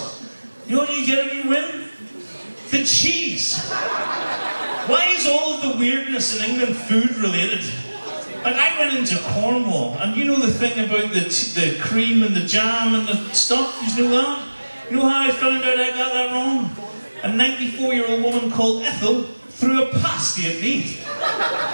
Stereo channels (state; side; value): inverted; both; correlation -1.00